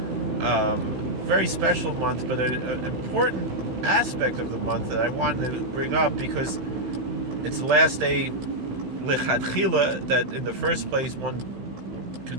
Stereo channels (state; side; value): late; left; 16 ms